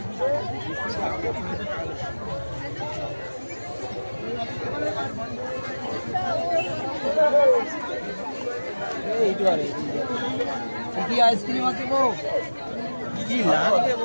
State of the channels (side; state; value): both; inverted; correlation -1.00